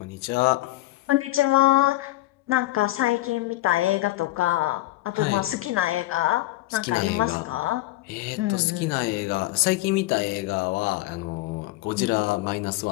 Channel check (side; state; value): right; quieter; 17.4 dB